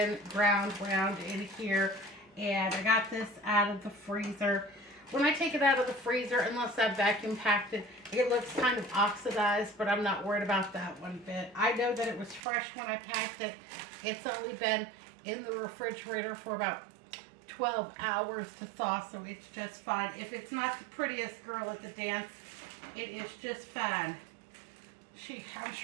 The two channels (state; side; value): drops out; left; at 12.4 s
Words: ground round in here, and I got this out of the freezer. When I take it out of the freezer, unless I vacuum packed it, it looks kind of oxidized, but I'm not worried about that one bit. I know that it was fresh when I packed it. It's only been in the refrigerator for about 12 hours to thaw, so it's just fine. If it's not the prettiest girl at the dance, it is just fine. I'm